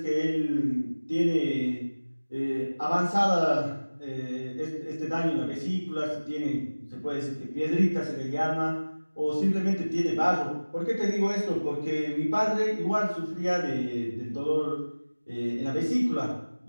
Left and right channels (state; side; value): inverted; both; correlation -1.00